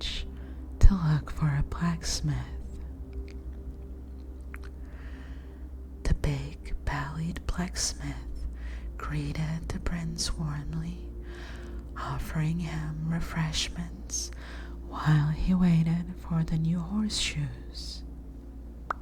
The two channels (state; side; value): identical; both; correlation 1.00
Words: to look for a blacksmith. The big-bellied blacksmith greeted the prince warmly, offering him refreshments while he waited for the new horseshoes.